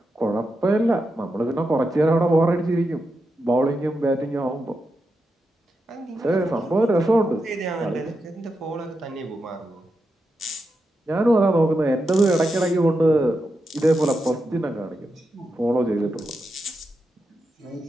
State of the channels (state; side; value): normal; both; correlation 0.87